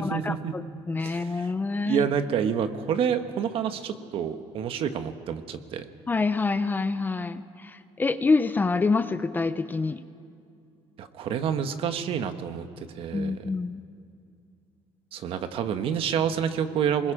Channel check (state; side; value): normal; both; correlation 0.65